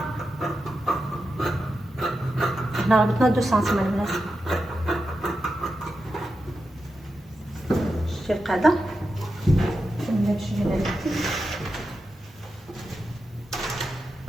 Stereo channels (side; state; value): both; normal; correlation 0.89